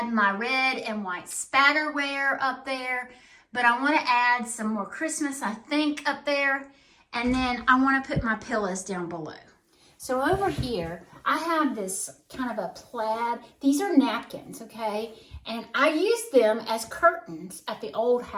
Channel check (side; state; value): both; identical; correlation 1.00